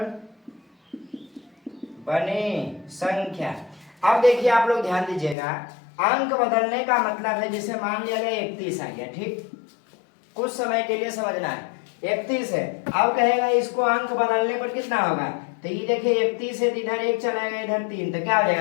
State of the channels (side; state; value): right; drops out; at 5.4 s